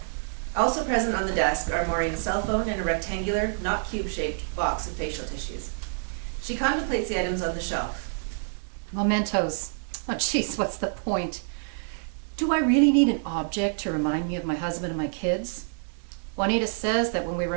Also present on the desk are Maureen's cell phone and a rectangular, not cube-shaped box of facial tissues. She contemplates the items on the shelf. Mementos. Oh, jeez, what's the point? Do I really need an object to remind me of my husband and my kids? Juanita says that when we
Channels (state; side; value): silent; left; digital silence